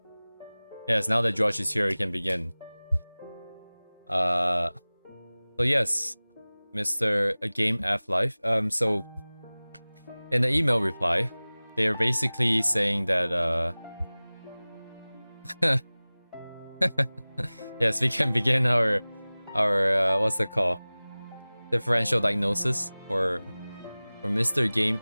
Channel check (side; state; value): both; inverted; correlation -0.99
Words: Yes, now that George is here, we can begin. So yes, Mr. Game F Life. So in the email reply, they're basically saying that yes, we can begin our what's it called? Differential diagnosis for Mr. Game